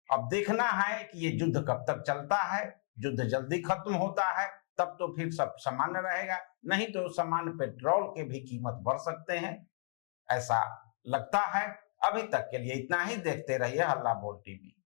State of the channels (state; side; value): silent; right; 55 dB below the other